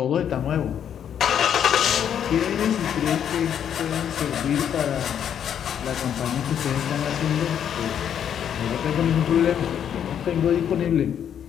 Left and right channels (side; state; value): right; quieter; 9.0 dB